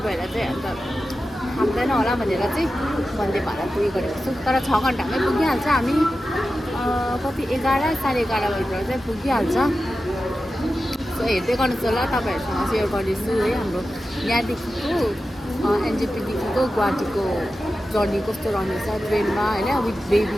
भएर चाहिँ अन्त थाक्दैन होला भनेर चाहिँ वन्दे भारत उयो गरेको छु। तर 6 घन्टामै पुगिहाल्छ हामी, कति 11 साढे 11 बजीतिर चाहिँ पुगिहाल्छ। सो हेर्दै गर्नुहोस् होला, तपाईँहरूसँग सेयर गर्नेछु है हाम्रो यहाँदेखिको एनजेपीदेखिको गुवाहाटीको जर्नी कस्तो रहनेछ ट्रेनमा होइन, विथ बेबी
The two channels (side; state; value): both; normal; correlation 0.93